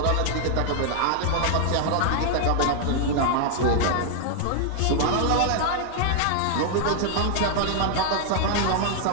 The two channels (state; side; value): different; both; correlation 0.00